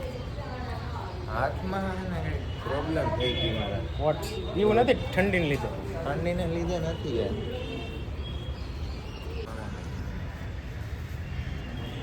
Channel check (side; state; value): both; identical; correlation 1.00